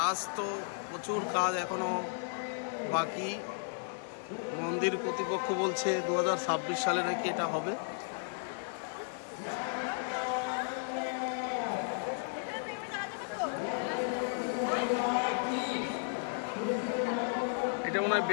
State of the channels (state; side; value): silent; right; digital silence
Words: তো প্রচুর, কাজ এখনো বাকি। মন্দির কর্তৃপক্ষ বলছে 2026 সালে নাকি এটা হবে। এটা মনে হয়